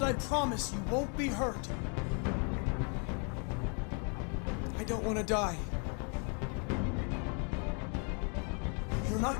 I promise you won't be hurt. I don't want to die. You're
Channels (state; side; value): quieter; right; 37.8 dB